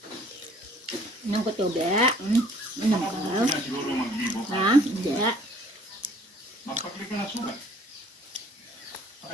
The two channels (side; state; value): both; normal; correlation 0.56